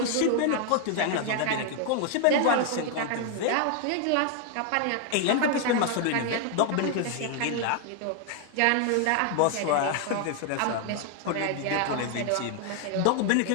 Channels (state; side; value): different; both; correlation 0.00